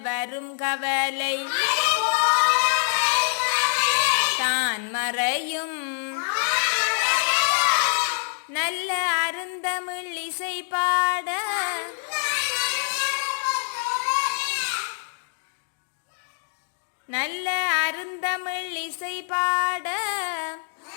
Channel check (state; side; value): silent; right; digital silence